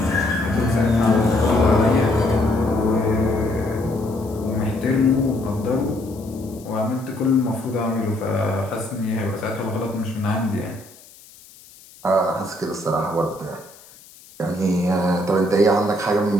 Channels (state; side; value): noise; left; hiss, 23 dB below the sound